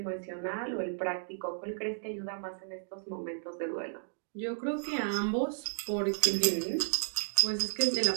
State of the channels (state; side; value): silent; left; digital silence